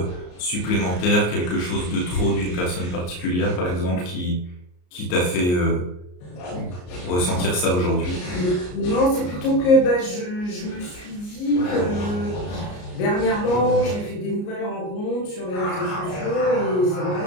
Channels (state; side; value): late; right; 34 ms